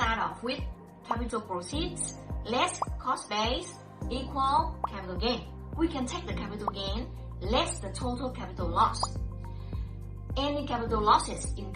off with capital proceeds less cost base equal capital gain. We can take the capital gain less the total capital loss. Any capital losses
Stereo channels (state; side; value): identical; both; correlation 1.00